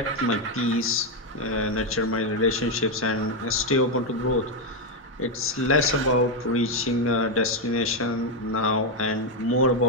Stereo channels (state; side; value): normal; both; correlation 0.04